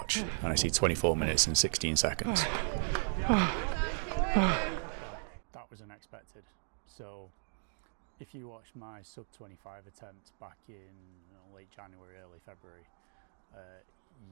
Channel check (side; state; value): left; silent; digital silence